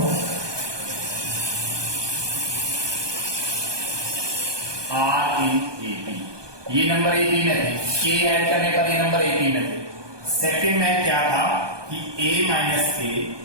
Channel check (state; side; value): late; left; 1.2 ms